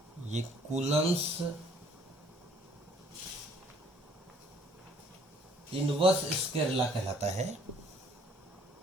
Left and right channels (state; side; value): normal; both; correlation 0.60